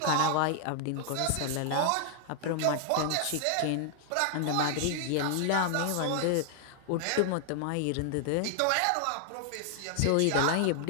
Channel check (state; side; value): different; both; correlation 0.00